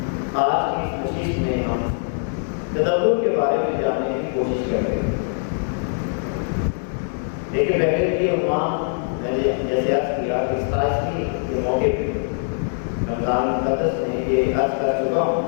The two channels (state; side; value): silent; right; 64 dB below the other